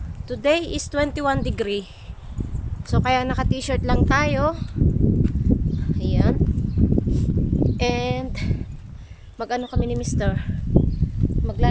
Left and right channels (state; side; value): identical; both; correlation 1.00